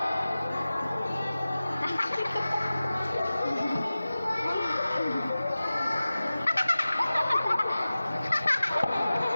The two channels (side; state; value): both; inverted; correlation -0.96